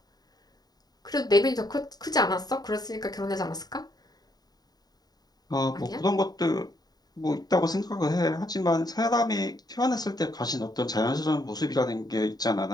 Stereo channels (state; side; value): late; right; 0.19 ms